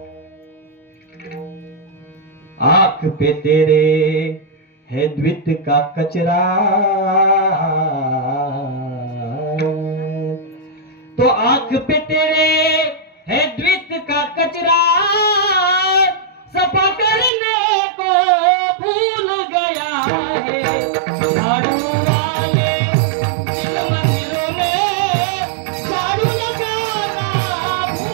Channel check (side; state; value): left; drops out; at 17.3 s